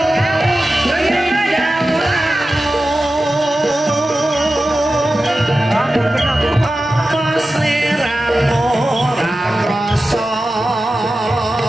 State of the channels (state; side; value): normal; both; correlation 0.94